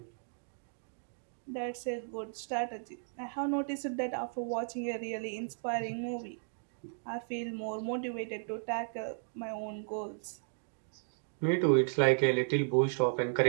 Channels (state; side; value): silent; left; digital silence